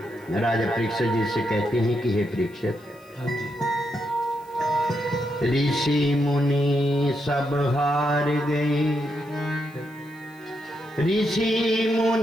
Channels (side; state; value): left; noise; hiss, 29 dB below the sound